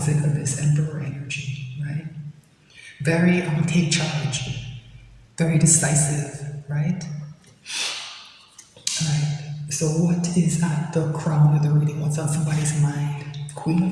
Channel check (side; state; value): both; identical; correlation 1.00